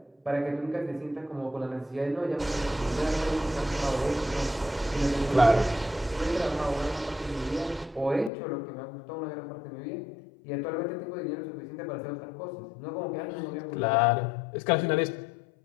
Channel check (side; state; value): right; drops out; at 8.3 s